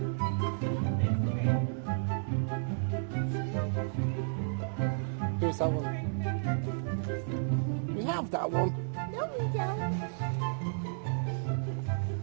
Who's that one? We have that one. No, we don't.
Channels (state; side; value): silent; left; digital silence